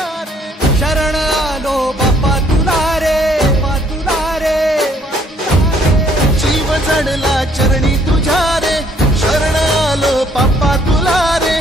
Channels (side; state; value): both; normal; correlation 0.64